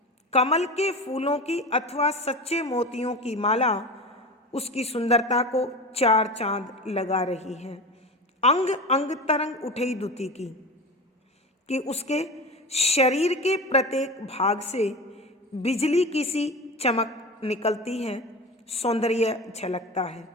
कमल के फूलों की अथवा सच्चे मोतियों की माला उसकी सुंदरता को चार चांद लगा रही है। अंग अंग तरंग उठई दुति की, कि उसके शरीर के प्रत्येक भाग से बिजली की सी चमक निकलती है, सौंदर्य झलकता है,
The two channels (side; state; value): both; normal; correlation 0.29